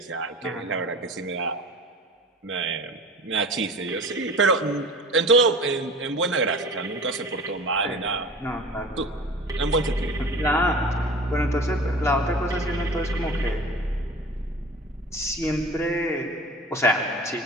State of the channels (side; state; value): both; normal; correlation 0.39